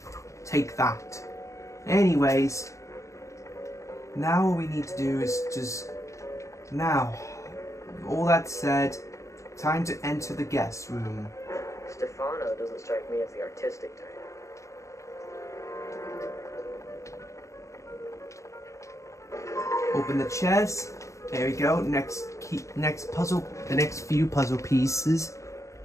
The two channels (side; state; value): right; late; 0.15 ms